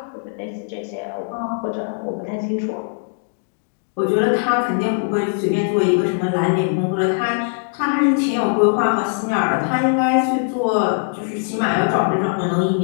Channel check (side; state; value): right; silent; digital silence